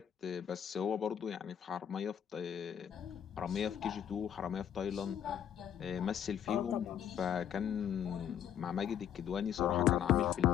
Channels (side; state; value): right; quieter; 9.3 dB